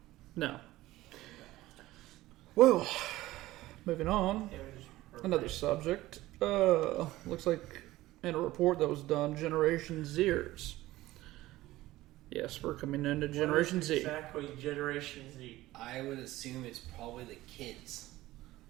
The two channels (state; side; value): quieter; left; 17.0 dB